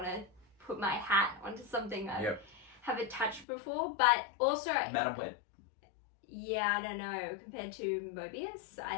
to put my hat onto something I haven't touched before. But also, Madam Web. Yeah, I don't know. Compared to Mobius,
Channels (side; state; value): right; drops out; at 3.5 s